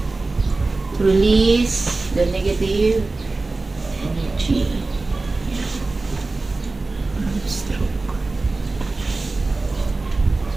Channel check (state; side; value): quieter; left; 3.4 dB